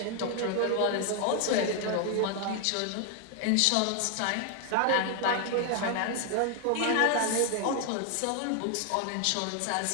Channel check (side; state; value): both; different; correlation 0.00